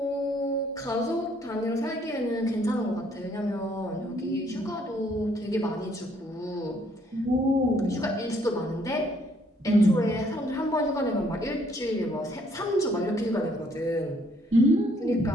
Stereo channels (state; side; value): normal; both; correlation 0.66